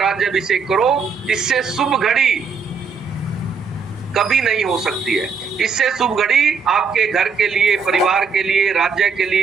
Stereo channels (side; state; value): left; quieter; 5.4 dB